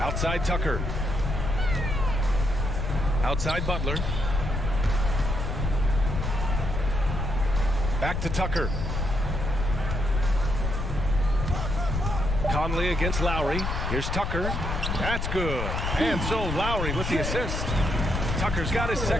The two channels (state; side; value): noise; left; rumble, 2 dB below the sound